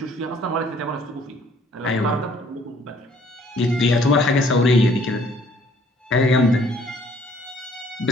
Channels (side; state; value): both; normal; correlation 0.60